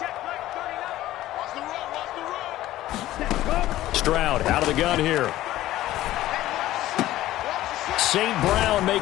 Stroud out of the gun here. St. Brown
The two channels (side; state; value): right; quieter; 15.0 dB